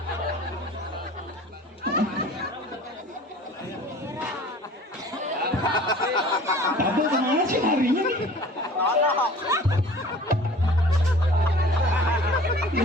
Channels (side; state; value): both; normal; correlation 0.46